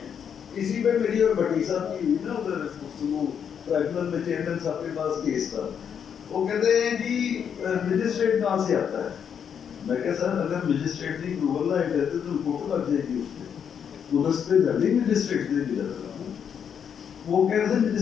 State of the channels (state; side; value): quieter; right; 7.8 dB